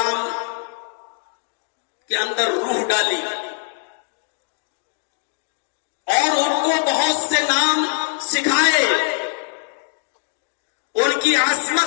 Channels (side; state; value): right; silent; digital silence